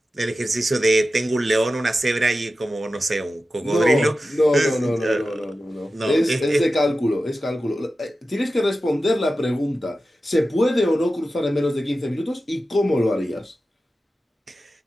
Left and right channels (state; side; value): normal; both; correlation 0.93